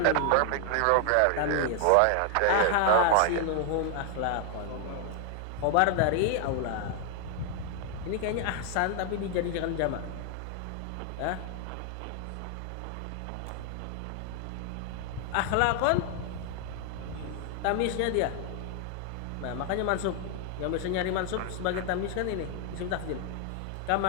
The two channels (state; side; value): different; both; correlation 0.00